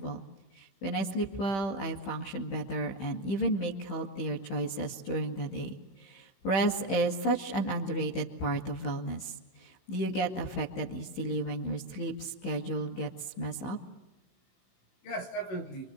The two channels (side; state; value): right; late; 15 ms